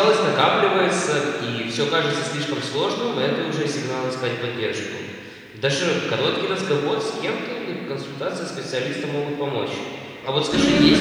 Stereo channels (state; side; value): identical; both; correlation 1.00